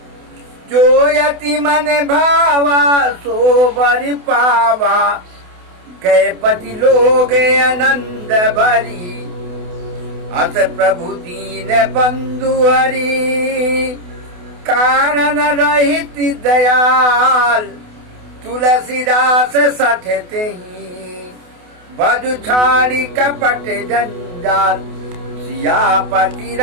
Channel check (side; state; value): left; late; 28 ms